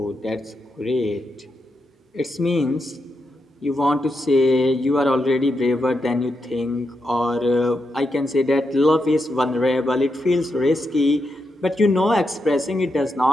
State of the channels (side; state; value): both; normal; correlation 0.85